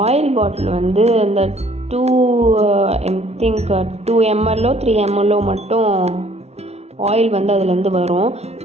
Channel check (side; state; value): left; late; 0.31 ms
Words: ஆயில் பாட்டில் வந்து இந்த 2 ml 3 ml மட்டும் ஆயில் வந்து அதுலேருந்து வரும்.